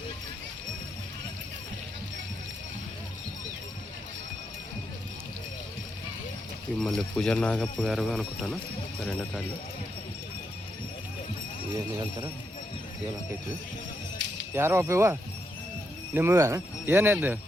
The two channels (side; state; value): both; normal; correlation 0.81